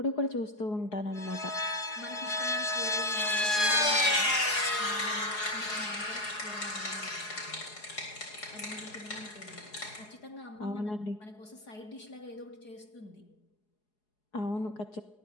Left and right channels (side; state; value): right; late; 4.8 ms